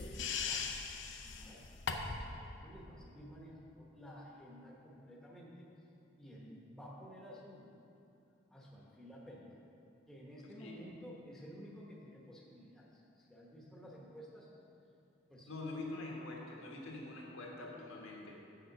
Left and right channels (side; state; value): right; quieter; 3.4 dB